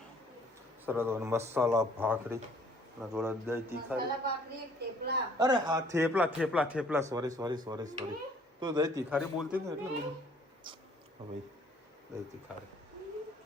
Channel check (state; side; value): normal; both; correlation 0.59